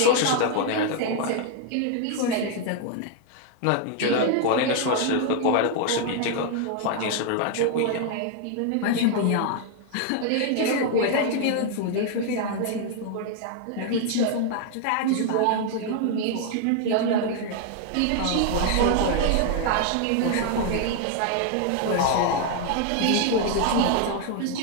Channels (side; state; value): both; different; correlation 0.00